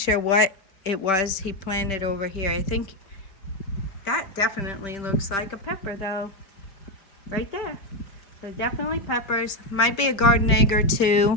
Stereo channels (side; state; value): right; late; 5.1 ms